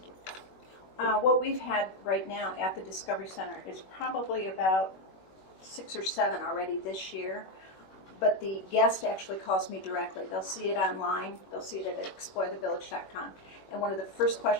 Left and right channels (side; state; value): right; late; 21 ms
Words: you. What we've had right now at the Discovery Center is probably about 6 or 7 already this year. But the guest actually calls me directly. They'll see it online. They'll see it at explorethevillage.com. And one of the first